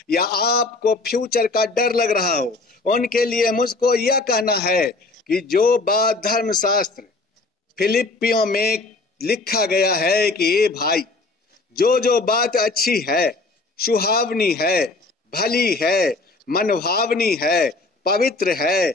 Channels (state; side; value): quieter; right; 3.4 dB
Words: या आपको फ्यूचर का डर लग रहा हो। उनके लिए मुझको यह कहना है कि जो बात धर्मशास्त्र फिलिपियों में लिखा गया है कि ये भाई, जो बात अच्छी है, सुहावनी है, भली है, मनभावनी है, पवित्र है,